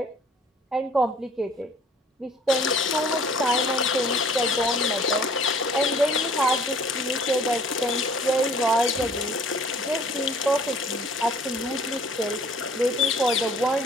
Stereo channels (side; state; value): both; normal; correlation 0.54